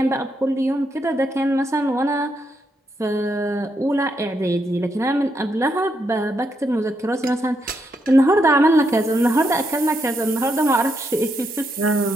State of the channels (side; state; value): both; normal; correlation 0.80